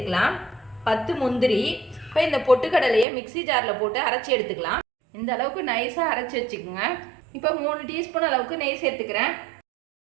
10 முந்திரி. இப்போ இந்த பொட்டுக்கடலையை மிக்சி ஜாரில் போட்டு அரைச்சி எடுத்துக்கலாம். இந்த அளவுக்கு நைஸாக அரைச்சி வச்சுக்கோங்க. இப்போ 3 டீஸ்பூன் அளவுக்கு நெய் சேர்த்துக்கிறேன்.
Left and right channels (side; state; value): left; drops out; at 3.1 s